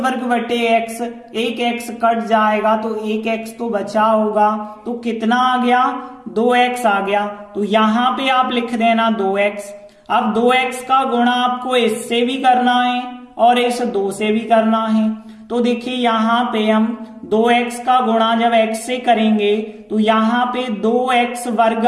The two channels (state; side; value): identical; both; correlation 1.00